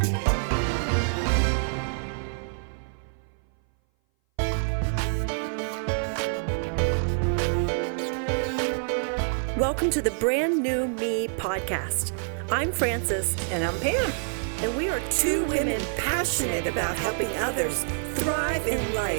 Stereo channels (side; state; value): left; silent; 58 dB below the other